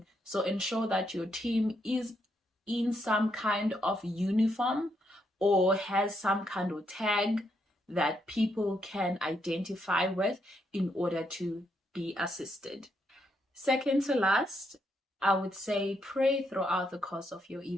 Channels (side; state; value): both; normal; correlation 0.77